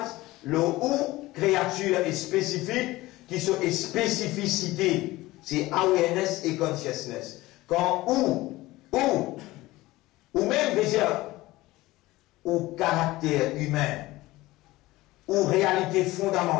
le ou créature est spécifique, qui sont des spécificités. C'est awareness et consciousness. Quand ou même déjà, ou caractère humain, ou réalité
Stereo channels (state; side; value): quieter; right; 18.6 dB